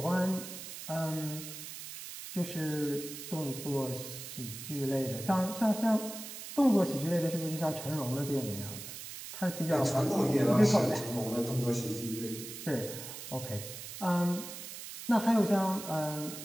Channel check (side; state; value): right; noise; hiss, 10 dB below the sound